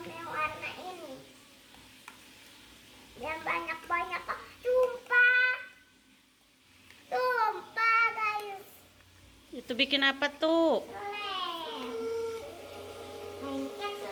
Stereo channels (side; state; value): both; identical; correlation 1.00